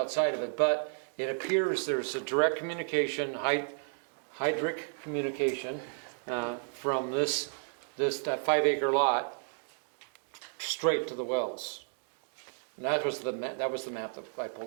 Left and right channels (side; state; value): left; silent; digital silence